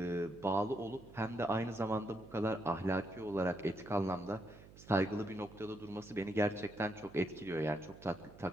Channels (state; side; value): noise; right; hum, 19 dB below the sound